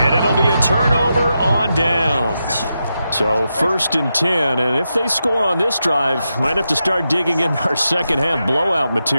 it'll be a turnover on downs. So 1st and 10. And if they score on this drive, might have to start digging in our second half blowout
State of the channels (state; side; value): inverted; both; correlation -0.87